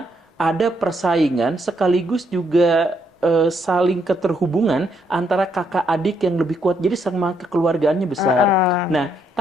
ada persaingan sekaligus juga saling keterhubungan antara kakak adik yang lebih kuat. Jadi sama kekeluargaannya besar. Nah,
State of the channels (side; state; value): both; normal; correlation 0.74